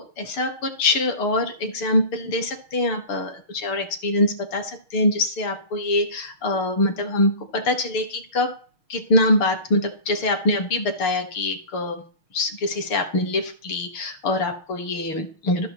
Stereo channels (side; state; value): right; late; 6.5 ms